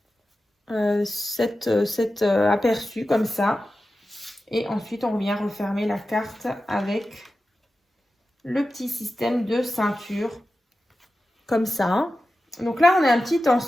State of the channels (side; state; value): both; normal; correlation 0.93